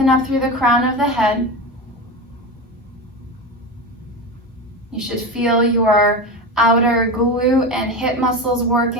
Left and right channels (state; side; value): normal; both; correlation 0.22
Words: up through the crown of the head. You should feel your outer glute and hip muscles